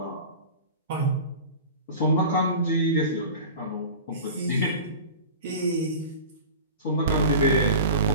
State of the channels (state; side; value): inverted; both; correlation -0.35